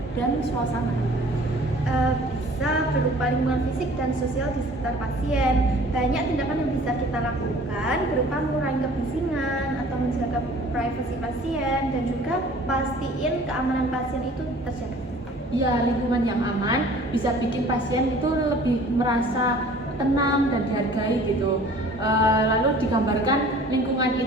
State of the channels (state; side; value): normal; both; correlation 0.49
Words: dan suasana. Bisa berupa lingkungan fisik dan sosial di sekitar pasien. Banyak tindakan yang bisa kita lakukan berupa mengurangi kebisingan atau menjaga privasi pasien dan juga pastiin keamanan pasien itu terjaga. Ya, lingkungan yang aman bisa bikin pasien itu lebih merasa tenang dan dihargai gitu. Lalu digambarkan lingkungan